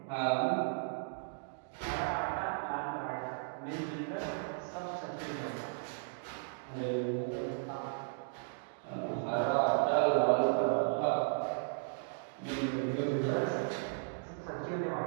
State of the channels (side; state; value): left; silent; digital silence